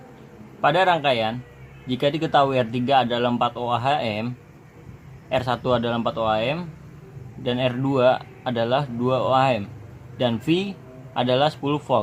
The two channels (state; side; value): identical; both; correlation 1.00